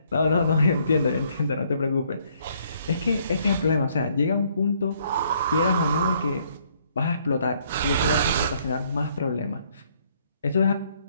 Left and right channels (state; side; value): inverted; both; correlation -0.67